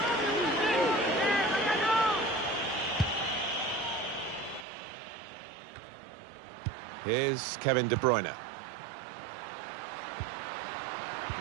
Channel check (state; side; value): drops out; left; at 4.7 s